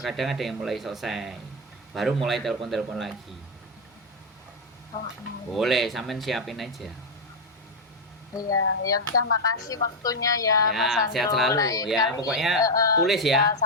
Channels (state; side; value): normal; both; correlation 0.02